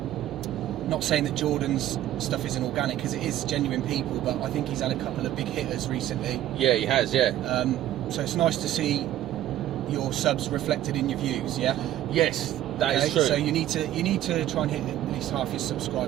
Not saying that Jordan's stuff isn't organic, because it is genuine people, but I think he's had a couple of big hitters recently. Yeah, he has. Yeah. So it's nice to see your subs reflected in your views. Yeah. Yes, that is true. So you need to try and hit at least half your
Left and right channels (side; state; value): left; quieter; 12.9 dB